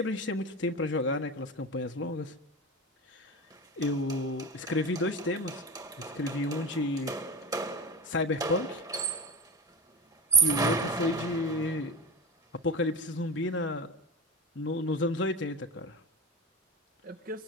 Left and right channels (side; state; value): both; normal; correlation 0.24